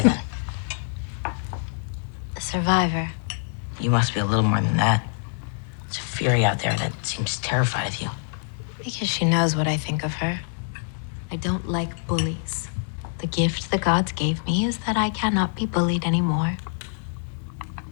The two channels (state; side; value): silent; right; 62 dB below the other